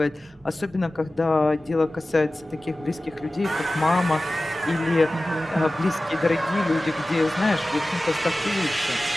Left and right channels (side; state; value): both; normal; correlation 0.96